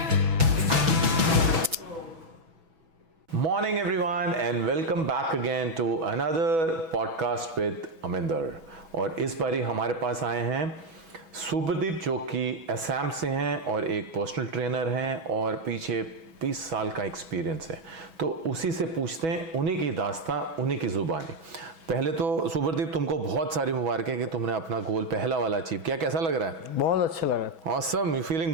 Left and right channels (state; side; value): late; left; 6.1 ms